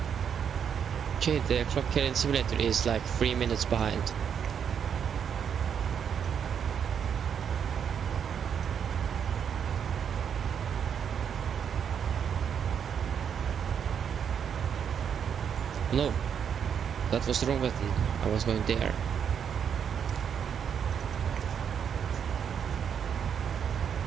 Okay, the clock here in simulator is like 3 minutes behind. No, that was the wrong button. I was going there.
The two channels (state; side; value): quieter; left; 7.8 dB